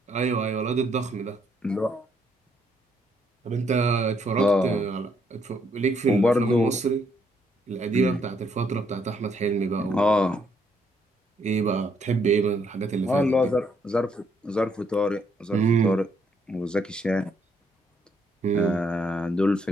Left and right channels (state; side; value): normal; both; correlation 0.72